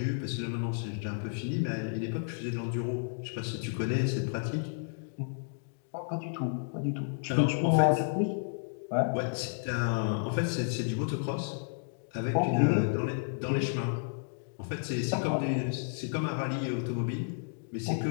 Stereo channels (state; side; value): silent; right; digital silence